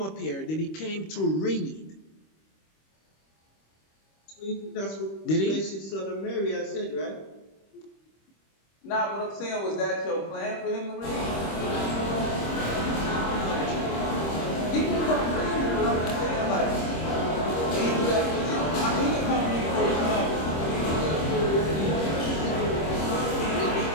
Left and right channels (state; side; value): late; right; 26 ms